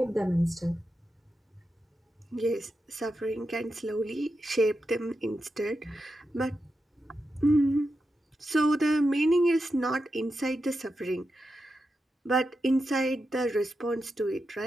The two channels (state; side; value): normal; both; correlation 0.88